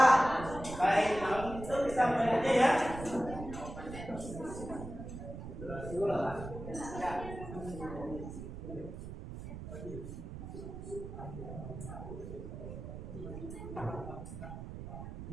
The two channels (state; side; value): noise; right; rumble, 9 dB below the sound